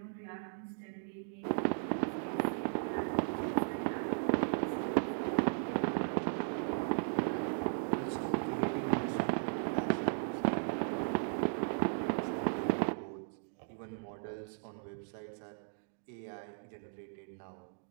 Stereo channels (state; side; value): silent; left; digital silence